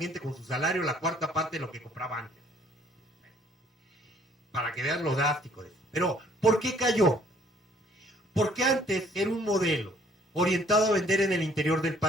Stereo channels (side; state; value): both; normal; correlation 0.61